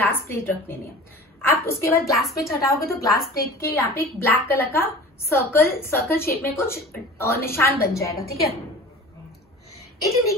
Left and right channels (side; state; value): both; normal; correlation 0.39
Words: plate रख देनी है। आप उसके बाद ग्लास प्लेट हटाओगे तो ग्लास प्लेट के यहाँ पे एक ब्लैक कलर का सर्कल शेप में कुछ निशान बन जाएगा, ठीक है? It